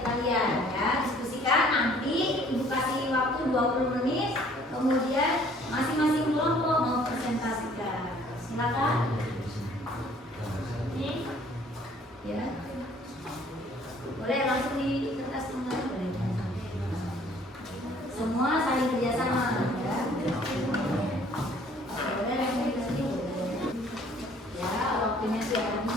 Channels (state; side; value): normal; both; correlation 0.57